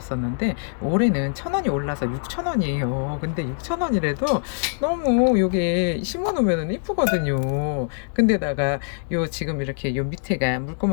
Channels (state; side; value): silent; right; digital silence